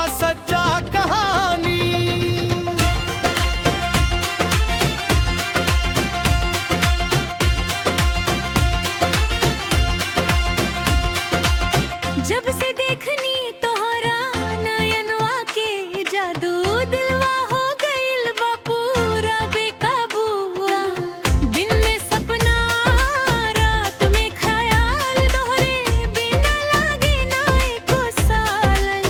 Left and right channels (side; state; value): both; identical; correlation 1.00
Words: सच्चा कहानी। जब से देखनी तोहरा नयनवा के जादू, दिलवा हो गइल बा पूरा बेकाबूआ। दिन में सपना, रात में ख्याल, तोहरे बिना लागे ना एको सालन।